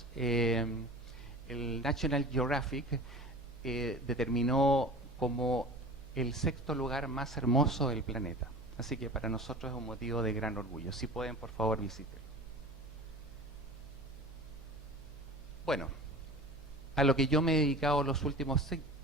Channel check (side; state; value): left; noise; hum, 23 dB below the sound